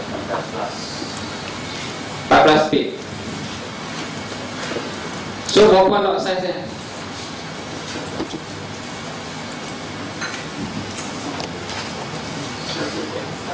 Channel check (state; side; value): identical; both; correlation 1.00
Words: 14 pip. So berapa lot size dia?